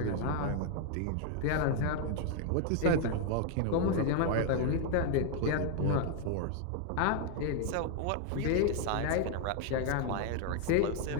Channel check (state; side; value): different; both; correlation 0.00